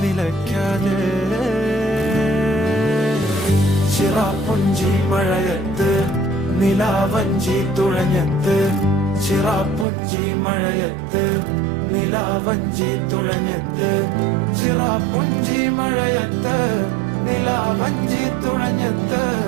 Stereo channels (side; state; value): left; drops out; at 9.9 s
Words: നിലയ്ക്കാതെ ചിറാപ്പുഞ്ചി മഴയത്ത് നിലാവഞ്ചി തുഴഞ്ഞത്ത് ചിറാപ്പുഞ്ചി മഴയത്ത് നിലാവഞ്ചി തുഴഞ്ഞത്ത് ചിറാപ്പുഞ്ചി മഴയത്ത് നിലാവഞ്ചി തുഴഞ്ഞത്ത്